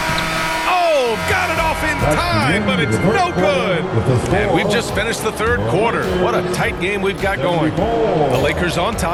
Oh, got it off in time, but it's no good. And we've just finished the third quarter. What a tight game we've got going. The Lakers on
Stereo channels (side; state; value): both; identical; correlation 1.00